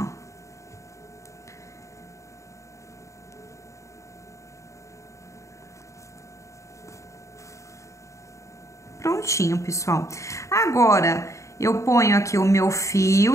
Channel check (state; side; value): late; right; 0.15 ms